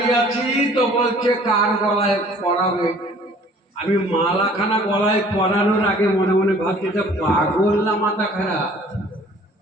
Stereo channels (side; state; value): both; normal; correlation 0.53